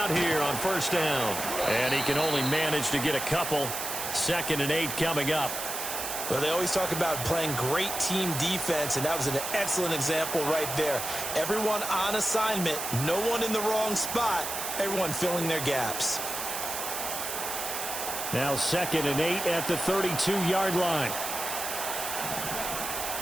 here on first down. And he can only manage to get a couple. 2nd and 8 coming up. Well, they always talk about playing great team defense, and that was an excellent example right there. Everyone on assignment, no one in the wrong spot, everyone filling their gaps. Now 2nd and 8 at the 32-yard line.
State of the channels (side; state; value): right; noise; hiss, 4 dB below the sound